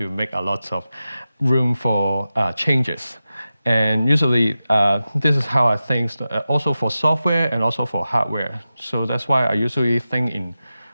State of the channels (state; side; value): inverted; both; correlation -0.93